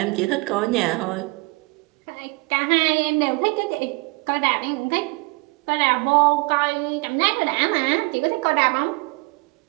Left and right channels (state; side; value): quieter; left; 27.2 dB